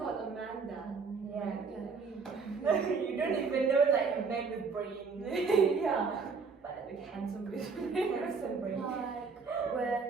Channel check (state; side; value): quieter; left; 5.0 dB